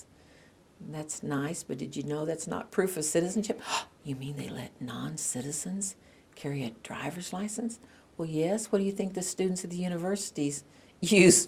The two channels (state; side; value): identical; both; correlation 1.00